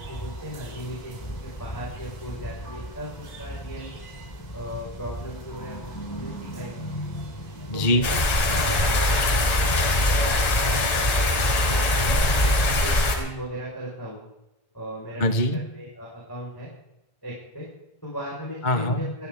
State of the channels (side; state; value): right; late; 1.9 ms